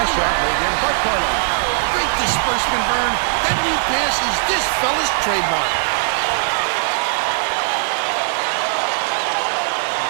shot laid in by Carlin. Great disbursement, Vern. That lead pass is this fella's trademark.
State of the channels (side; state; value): left; silent; digital silence